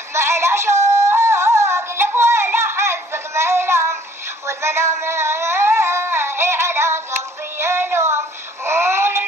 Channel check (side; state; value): both; normal; correlation 0.58